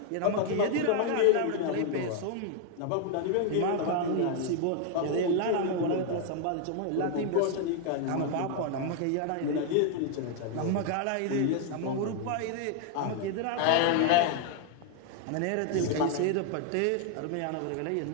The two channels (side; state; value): both; different; correlation 0.00